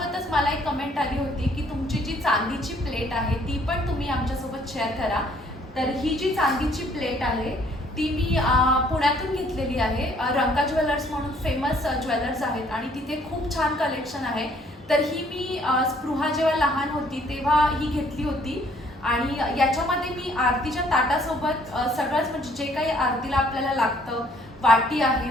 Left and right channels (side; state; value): both; normal; correlation 0.62